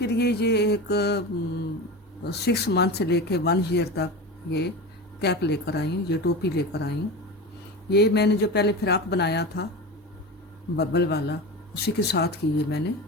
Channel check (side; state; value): both; normal; correlation 0.27